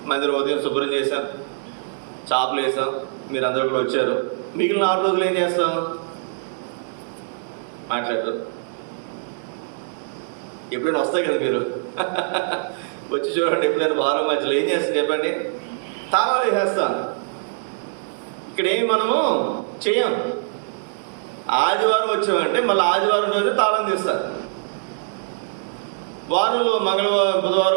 మందిరం ఉదయం శుభ్రం చేశాం, చాపలు వేసాం, మీరు అందరూ కూడా వచ్చారు. మిగిలిన 6 రోజులు ఏం చేస్తాం? మాట్లాడరు. ఎప్పుడైనా వస్తాయి కదా మీరు వచ్చి చూడండి. ఎప్పుడైనా వారం మధ్యలో ఏం చేస్తాం చెప్పండి? తాళాలు వేసేస్తాం. ఇక్కడ ఏమి మనము చేయం. ఆదివారం వచ్చామంటే మళ్ళీ ఆదివారం రోజు తాళం తీస్తారు. వారంలో మంగళవారం,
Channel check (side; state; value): left; silent; digital silence